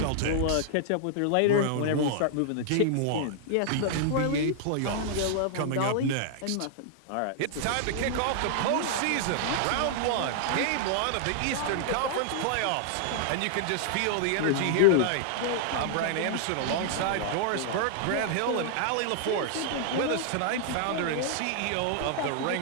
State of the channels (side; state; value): both; different; correlation -0.01